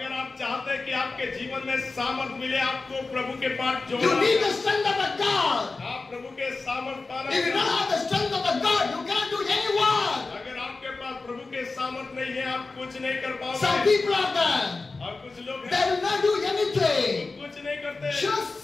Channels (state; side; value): quieter; right; 3.7 dB